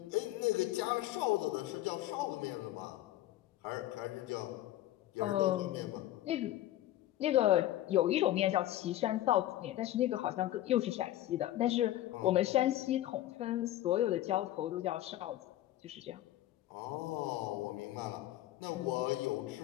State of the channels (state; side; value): quieter; right; 14.2 dB